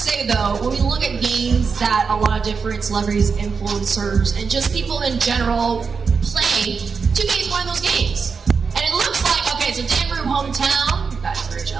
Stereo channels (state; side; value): quieter; left; 5.4 dB